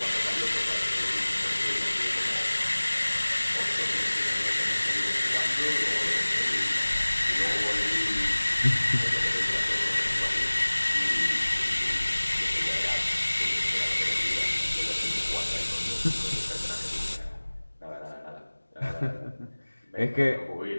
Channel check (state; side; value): inverted; both; correlation -1.00